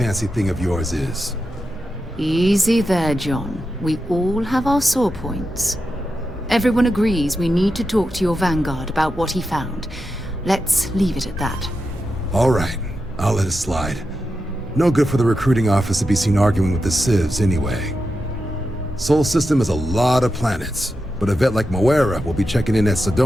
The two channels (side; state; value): both; normal; correlation 0.89